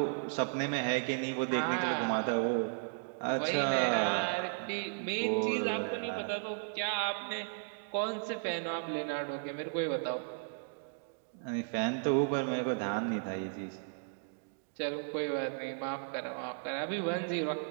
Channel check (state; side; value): silent; left; digital silence